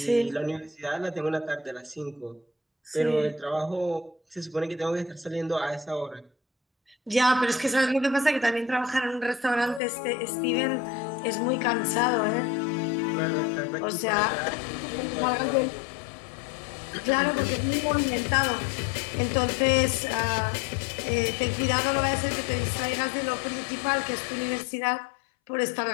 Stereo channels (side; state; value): right; drops out; at 9.8 s